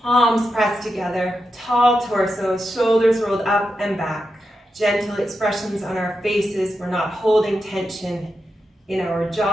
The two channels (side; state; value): both; normal; correlation 0.87